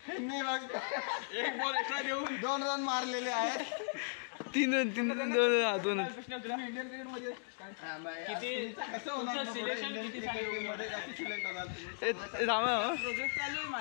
त्यांनी मग 1 बॉल एक्स्ट्रा देऊन 2 रन मारलेले आहेत. 3 रन 2 इंडियन क्रिकेट मध्ये कसं होणार प्रोजेक्ट चालू आहे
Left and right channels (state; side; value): silent; right; digital silence